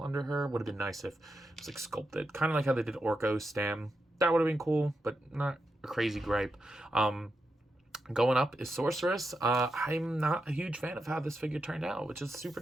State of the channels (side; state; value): both; normal; correlation 0.87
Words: under her. Would have been nice if it was like sculpted, kind of like how they did Orko's stem. That would have been cool, but not a crazy gripe. Going up is Sorceress. I'm not a huge fan of how this figure turned out, which is super